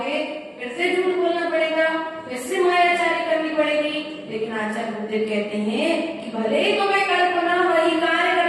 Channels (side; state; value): both; identical; correlation 1.00